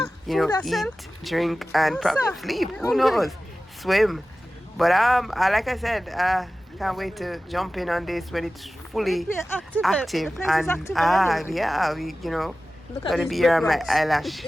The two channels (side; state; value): both; normal; correlation 0.96